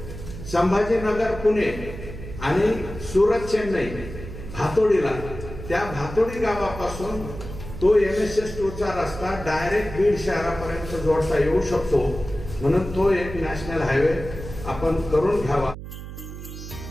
संभाजीनगर पुणे आणि सुरत चेन्नई भातोडीला, त्या भातोडी गावापासून तो MSS2चा रस्ता डायरेक्ट बीड शहरापर्यंत जोडता येऊ शकतो. म्हणून तो एक नॅशनल हायवे आपण करून घ्यावा.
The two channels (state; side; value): noise; right; hum, 11 dB below the sound